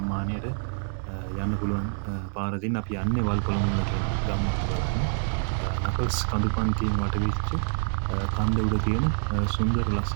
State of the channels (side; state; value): left; silent; 60 dB below the other